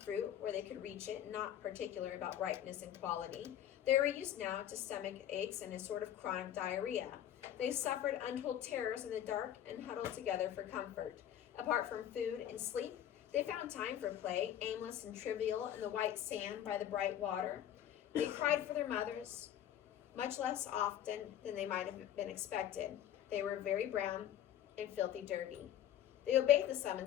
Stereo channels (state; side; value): quieter; right; 11.0 dB